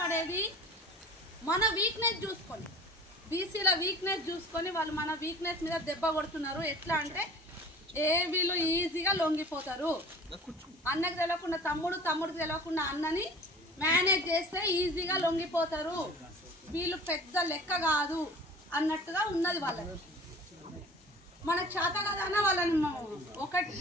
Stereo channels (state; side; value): normal; both; correlation 0.43